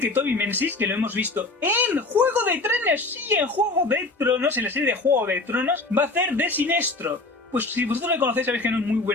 que Toby Menzies, que lo hemos visto en Juego de Tronos, sí, en Juego de Tronos, en la serie de Juego de Tronos, va a hacer de Sinestro. Pues si vosotros le conocéis sabéis que no es muy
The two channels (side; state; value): right; quieter; 3.3 dB